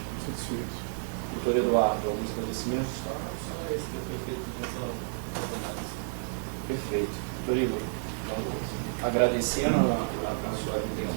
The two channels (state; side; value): silent; left; digital silence